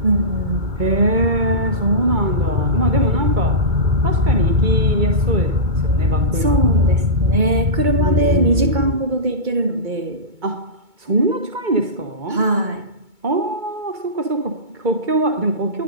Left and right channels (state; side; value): late; left; 2.2 ms